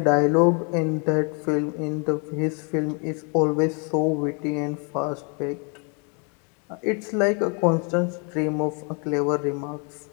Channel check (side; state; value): right; quieter; 36.5 dB